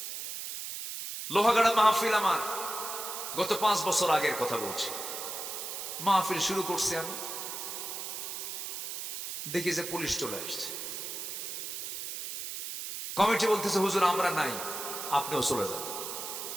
লোহাগাড়া মাহফিল, আমার গত 5 বছর আগের কথা বলছি। মাহফিল শুরু করছি আমি, দেখি যে পুলিশ চলে আসছে। কমিটি বলতেছে হুজুর আমরা নাই, আপনিও চলে যান।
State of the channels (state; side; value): noise; right; hiss, 6 dB below the sound